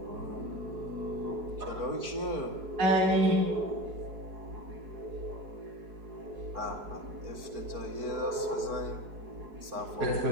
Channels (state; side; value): late; left; 4.7 ms